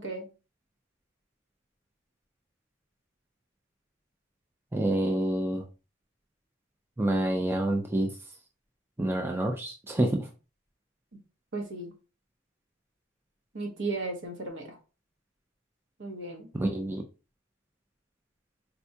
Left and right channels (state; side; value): normal; both; correlation 0.80